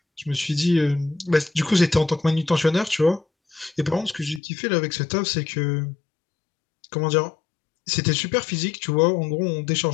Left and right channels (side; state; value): right; drops out; at 4.4 s